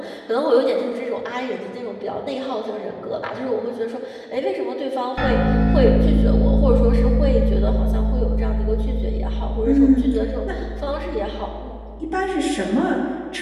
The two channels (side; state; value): both; identical; correlation 1.00